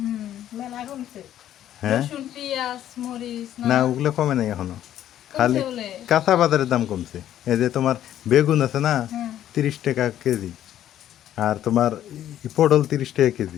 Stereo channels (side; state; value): right; quieter; 11.6 dB